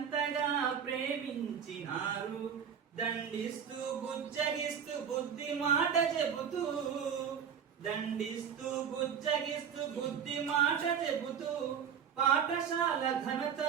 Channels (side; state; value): left; quieter; 7.7 dB